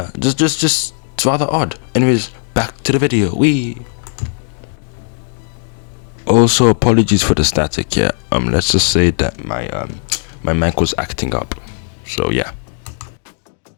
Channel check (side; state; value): right; silent; digital silence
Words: just it's rather odd. Anyways, back to the video. Also, apologies for the static. Yeah, let's just say that my mic was acting up. So yeah.